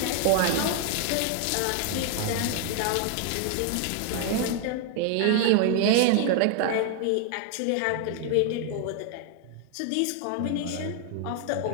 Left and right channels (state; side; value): different; both; correlation 0.00